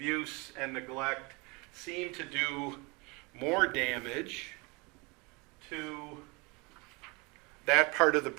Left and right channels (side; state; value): left; quieter; 27.6 dB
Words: and neglect seem to do more damage to that part of the